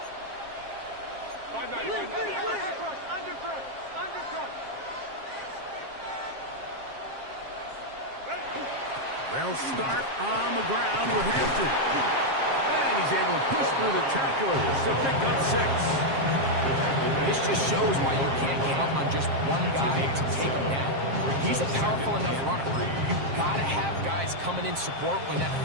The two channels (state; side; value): late; left; 7.5 ms